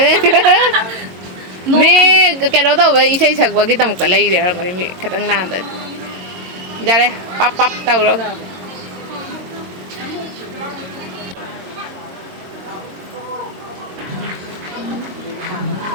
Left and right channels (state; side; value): late; left; 22 ms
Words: Mấy cái đó đâu vậy xây sạc vào cái tầm cái lấy để rồi mình khát ăn nàn rồi ra đây pop đâu rồi